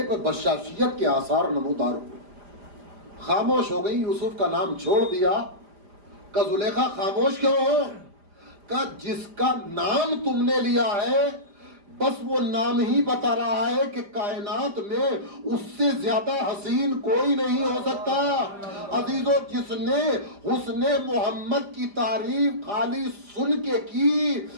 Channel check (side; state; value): left; late; 5.0 ms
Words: پر بشاشیت کے آثار نمودار ہوئے. خاموش ہو گئی، یوسف کا نام چھوڑ دیا. کہ زلیخا خاموش کیوں ہو؟ کہ جس کا نام تم نے لیا ہے بس وہ نام ہی بتا رہا ہے کہ کائنات میں اس سے زیادہ حسین کوئی نہیں ہو سکتا. عزیزو، جس نے حسن محمد کی تعریف خالی سن کے کی،